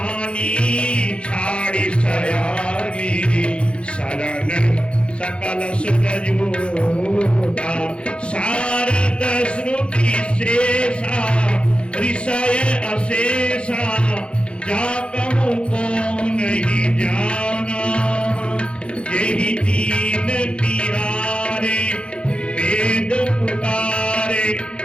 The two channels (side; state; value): right; late; 0.058 ms